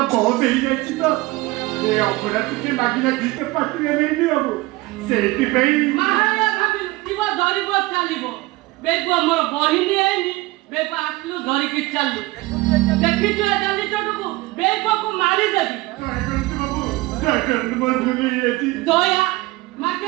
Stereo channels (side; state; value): left; quieter; 21.0 dB